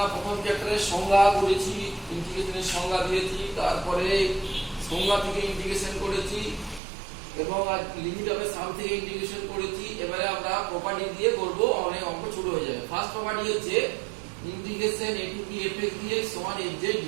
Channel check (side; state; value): left; drops out; at 6.8 s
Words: প্রথম চ্যাপ্টারে সংজ্ঞা করেছি, ইন্টিগ্রেশনের সংজ্ঞা দিয়েছি, তারপরে সংজ্ঞা থেকে ইন্টিগ্রেশন করেছি এবং লিমিট অফ সাম থেকে ইন্টিগ্রেশন করেছি। এবারে আমরা প্রপার্টি দিয়ে করব, অনেক অঙ্ক ছোট হয়ে যাবে। ফার্স্ট প্রপার্টি হচ্ছে integration a to b fx dx সমান fz